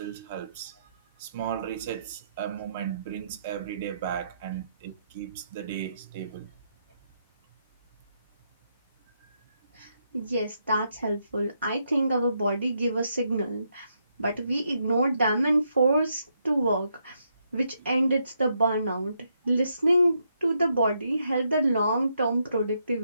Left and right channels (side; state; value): both; inverted; correlation -0.78